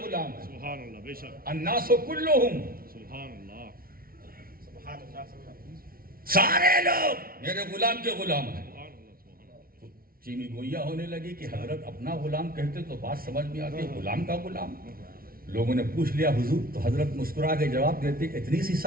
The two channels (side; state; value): left; late; 0.43 ms